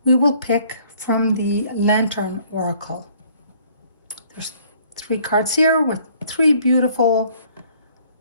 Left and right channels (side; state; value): both; inverted; correlation -0.59